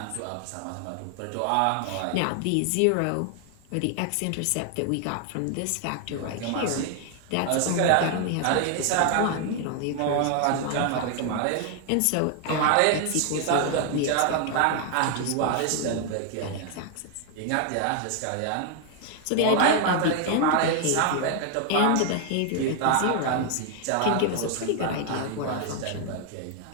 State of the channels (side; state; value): both; different; correlation 0.00